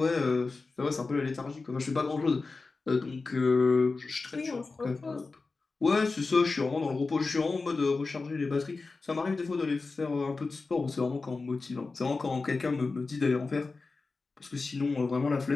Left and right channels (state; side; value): quieter; right; 3.9 dB